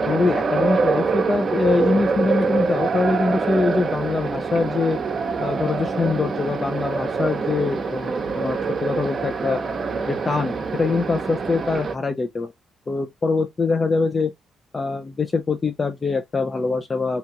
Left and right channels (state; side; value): normal; both; correlation 0.84